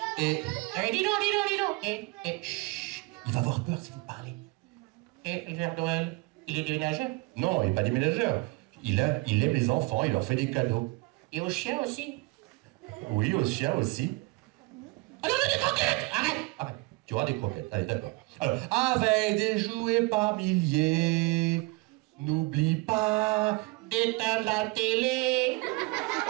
Et Eh, dis donc. Chut. il va avoir peur si vous parlez. Et le Père Noël, il est déménageur. Non, il n'est pas déménageur. Il aime les enfants, il leur fait des cadeaux. Et aux chiens aussi. Oui, aux chiens aussi. Ah non, des croquettes. Arrête. Tu auras des croquettes. Allez, d'accord. Alors, avec des jouets par milliers, n'oublie pas D'éteindre la télé.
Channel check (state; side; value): quieter; left; 25.0 dB